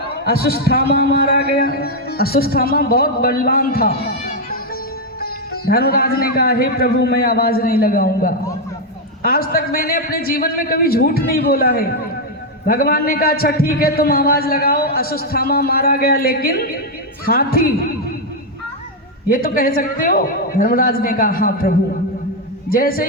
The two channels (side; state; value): both; normal; correlation 0.01